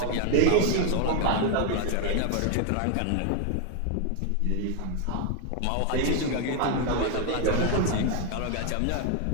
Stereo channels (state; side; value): different; both; correlation 0.01